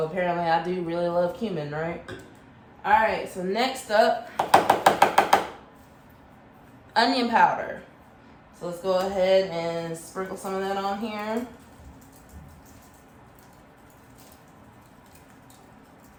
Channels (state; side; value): identical; both; correlation 1.00